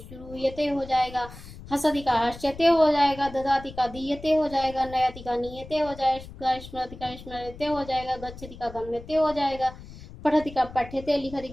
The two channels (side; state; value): left; noise; rumble, 15 dB below the sound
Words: हो जाएगा, हसति का हर्ष्यते हो जाएगा, ददाति का दीयते हो जाएगा, नयति का नीयते हो जाएगा, स्मरति का स्मरते हो जाएगा, गच्छति का गम्यते हो जाएगा, पठति का पठ्यते, लिखति